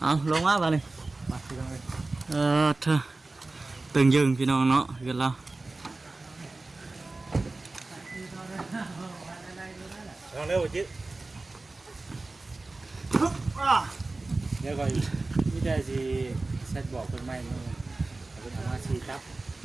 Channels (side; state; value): left; quieter; 3.3 dB